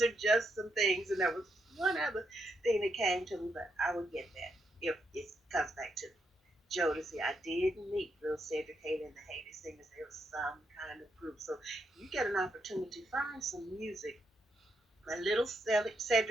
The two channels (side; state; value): both; normal; correlation 0.80